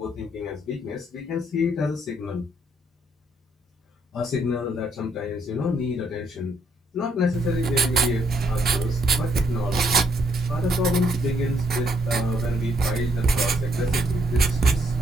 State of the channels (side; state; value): both; normal; correlation 0.72